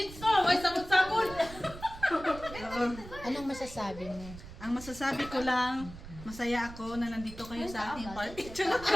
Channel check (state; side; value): noise; right; rumble, 14 dB below the sound